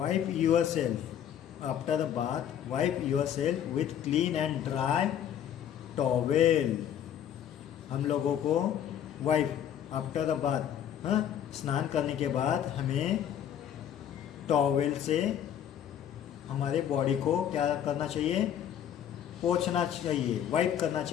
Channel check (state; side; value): quieter; right; 9.8 dB